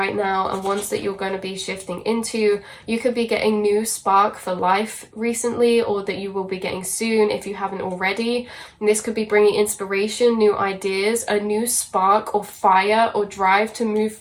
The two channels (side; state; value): both; identical; correlation 1.00